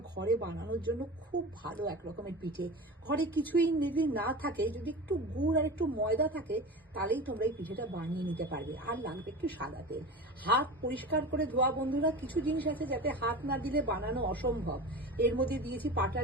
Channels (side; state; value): both; normal; correlation 0.30